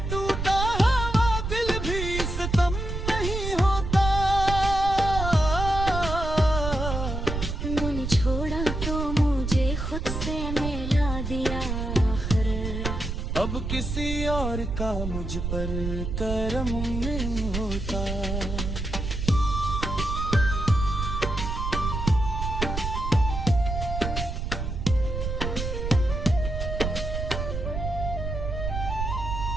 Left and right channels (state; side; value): noise; right; rumble, 4 dB below the sound